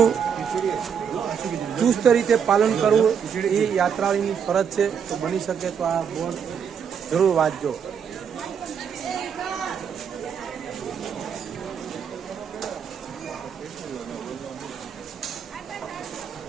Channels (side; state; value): left; quieter; 7.4 dB